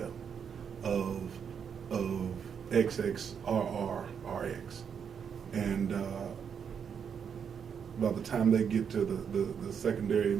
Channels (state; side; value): quieter; left; 7.3 dB